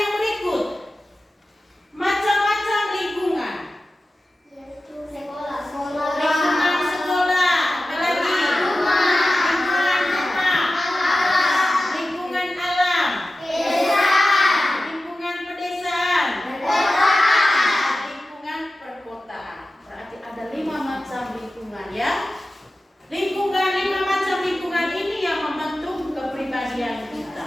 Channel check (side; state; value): both; normal; correlation 0.95